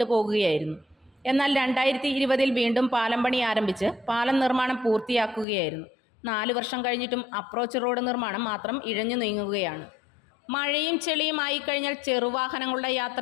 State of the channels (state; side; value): drops out; right; at 5.5 s